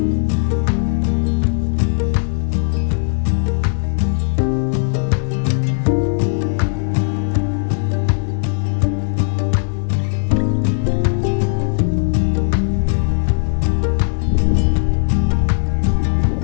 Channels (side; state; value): right; silent; digital silence